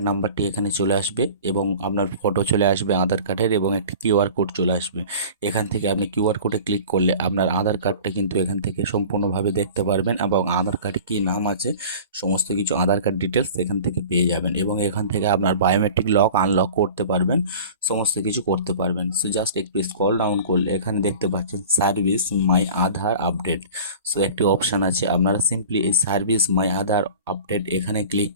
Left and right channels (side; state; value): both; inverted; correlation -0.41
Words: নাম্বারটি এখানে চলে আসবে এবং আপনার ফটো চলে আসবে আধার কার্ডের এবং একটি কিউআর কোড চলে আসবে। এখান থেকে আপনি কিউআর কোডে ক্লিক করলে আপনার আধার কার্ডটা কিন্তু এখান থেকে সম্পূর্ণভাবে দেখতে পারবেন এবং আধার কার্ডে কী নাম আছে সমস্ত কিছু আধার কার্ড ডিটেলস এখান থেকে পেয়ে যাবেন এবং এখান থেকে আপনার বায়োমেট্রিক লক আনলক করতে পারবেন, সমস্ত কিছু করতে পারবেন। সো জাস্ট একটু স্ক্রল ডাউন করলে এখানে দেখতে পাচ্ছেন সার্ভিস মাই আধার আপডেট। সো একটি অপশান আছে, আপনারা সিম্পলি এই সার্ভিস মাই আধার আপডেট এখানে ক্লিক